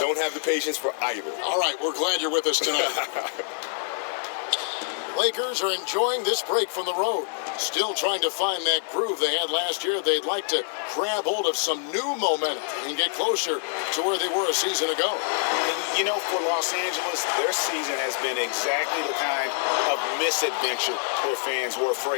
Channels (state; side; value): silent; right; 61 dB below the other